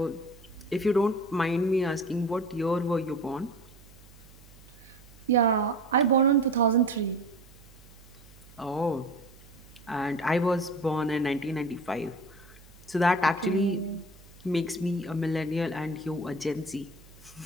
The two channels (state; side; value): noise; right; hum, 23 dB below the sound